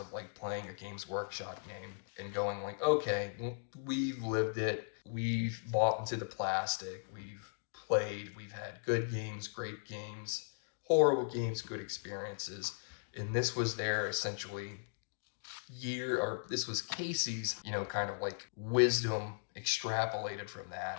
like playing a Games Workshop game and going like, okay, we've lived it. We've bought into the plastic. We've played. We've had good games, great games, horrible games, good experiences. And this was their essentially this was Casey's, kind of like wisdom extrapolated from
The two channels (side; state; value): right; silent; digital silence